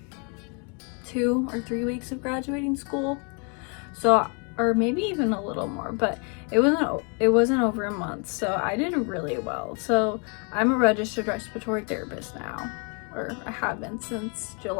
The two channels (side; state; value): right; quieter; 36.3 dB